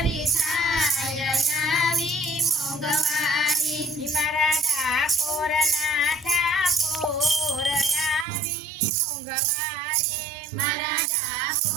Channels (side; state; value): left; drops out; at 8.2 s